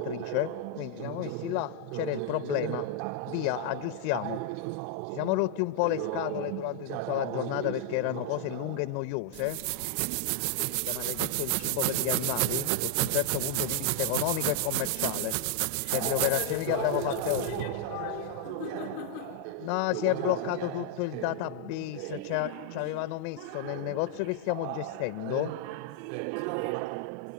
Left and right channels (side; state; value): both; different; correlation 0.00